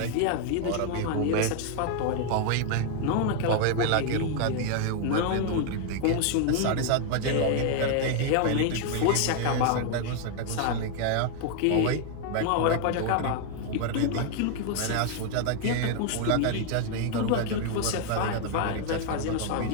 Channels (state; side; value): different; both; correlation 0.00